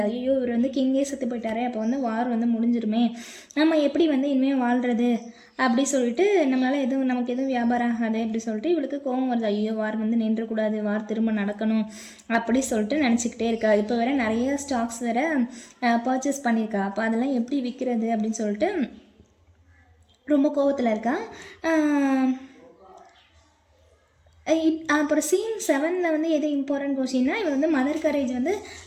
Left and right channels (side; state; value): both; identical; correlation 1.00